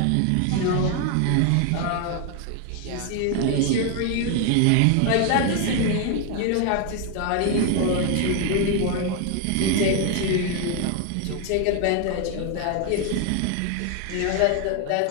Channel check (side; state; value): both; different; correlation 0.01